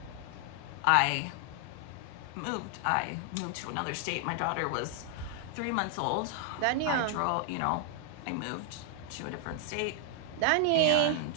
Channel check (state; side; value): different; both; correlation 0.00